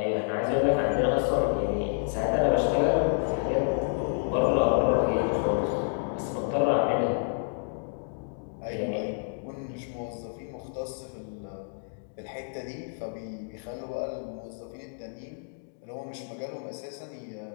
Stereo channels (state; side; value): silent; right; digital silence